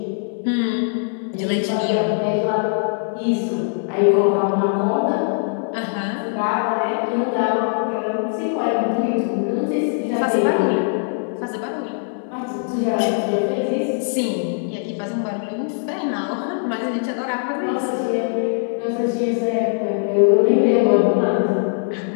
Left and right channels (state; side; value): silent; right; 65 dB below the other